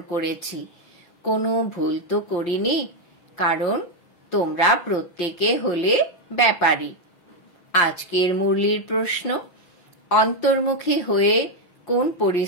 করেছি। কোনো ভুল তো করিনি, কারণ তোমরা প্রত্যেকে হলে ব্যাপারী। আজকের মুরলির প্রশ্ন, অন্তর্মুখী হয়ে কোন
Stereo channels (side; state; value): right; late; 5.7 ms